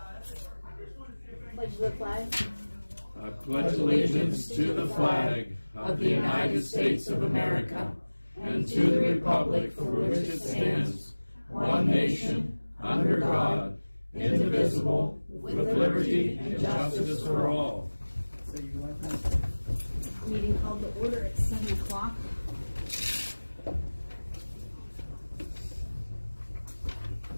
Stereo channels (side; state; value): both; inverted; correlation -1.00